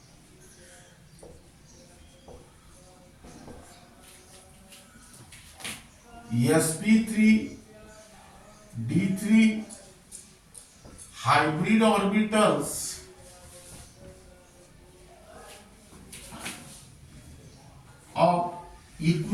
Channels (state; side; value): identical; both; correlation 1.00